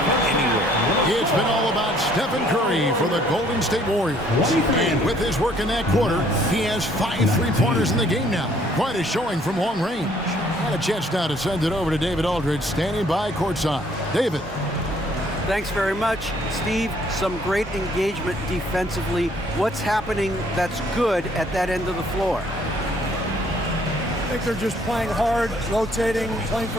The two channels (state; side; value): normal; both; correlation 0.62